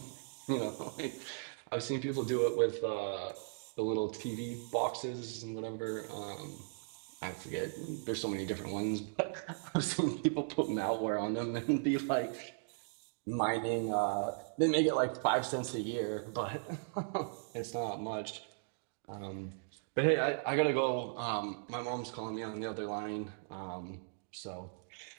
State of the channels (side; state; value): left; silent; digital silence